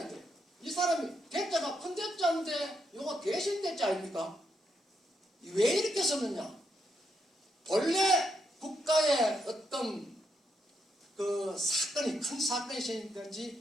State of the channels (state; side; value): normal; both; correlation 0.80